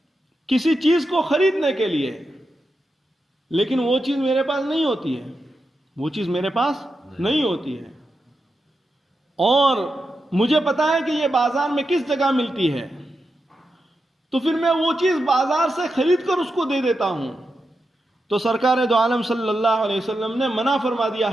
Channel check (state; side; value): normal; both; correlation 0.88